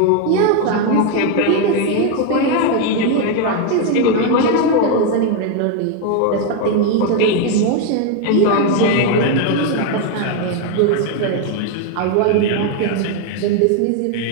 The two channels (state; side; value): different; both; correlation 0.01